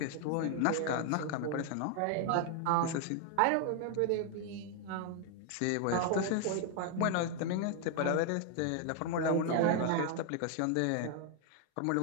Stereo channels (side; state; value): both; different; correlation 0.00